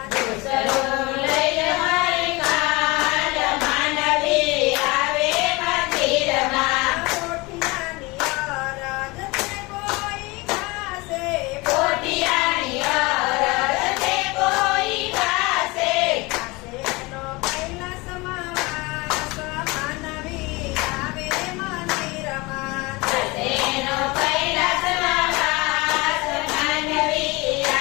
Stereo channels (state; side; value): quieter; right; 24.2 dB